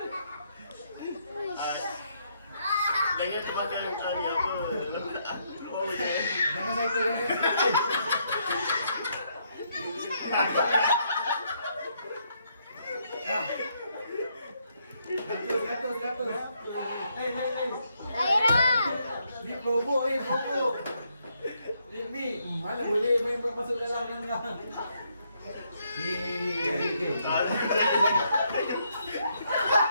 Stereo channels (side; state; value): both; inverted; correlation -0.75